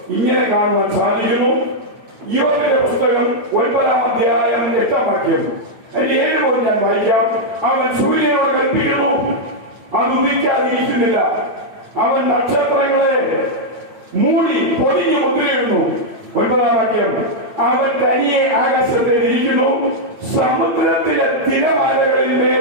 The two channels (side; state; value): left; late; 8.8 ms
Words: ഇങ്ങനെ കാണുവാൻ സാധിക്കുന്നു. യോബിന്റെ പുസ്തകം 9-ാം അധ്യായം 8-ാം വാക്യം അതിന്റെ 7 മുതൽ ഞാൻ വായിക്കാം. അവൻ സൂര്യനോട് കൽപ്പിക്കുന്നു, അത് ഉദിക്കാതിരിക്കുന്നില്ല. അവൻ നക്ഷത്രങ്ങളെ മൂടി പൊതിഞ്ഞു മുദ്രയിടുന്നു. 9-ാം വാക്യം, അവൻ തനിയെ ആകാശത്തിൽ ഇരിക്കുന്നു, സമുദ്രത്തിലെ തിരമാലകളിൽ